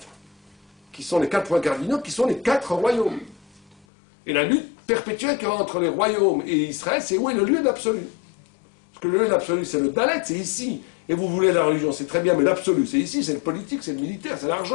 qui sont les 4 points cardinaux, qui sont les 4 royaumes. Et la lutte perpétuelle qu'il y a entre les royaumes et Israël, c'est où est le lieu d'absolu. Parce que le lieu d'absolu, c'est le Dalet, c'est ici. Et vous voulez la religion, c'est très bien, mais l'absolu, c'est ici, c'est le politique, c'est le militaire, c'est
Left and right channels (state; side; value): drops out; right; at 3.9 s